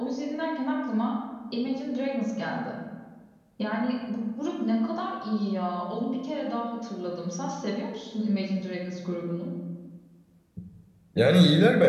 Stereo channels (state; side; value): identical; both; correlation 1.00